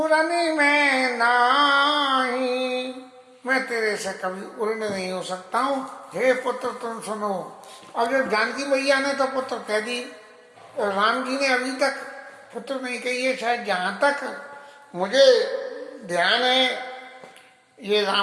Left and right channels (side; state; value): both; identical; correlation 1.00